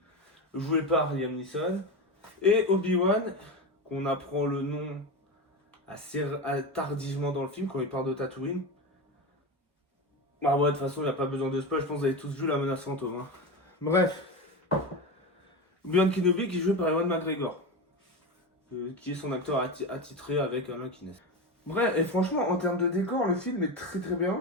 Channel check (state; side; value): normal; both; correlation 0.21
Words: joué par Liam Neeson, et Obi-Wan, qu'on apprend le nom assez tardivement dans le film, quand il parle de Tatooine. Ah ouais, de toute façon, il n'y a pas besoin de spoil, je pense que vous avez tous vu La Menace Fantôme. Hein. Bref. Obi-Wan Kenobi qui est joué par Ewan McGregor, qui est son acteur attitré avec Alain Guinness. Bref, et franchement, en termes de décor, le film est très très